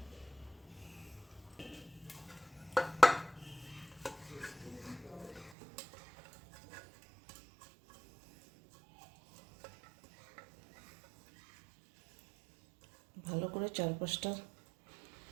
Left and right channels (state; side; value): drops out; left; at 5.6 s